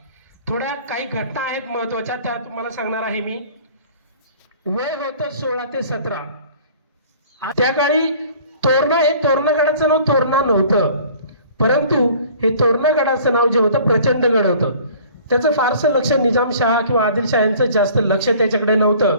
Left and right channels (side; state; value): both; inverted; correlation -0.50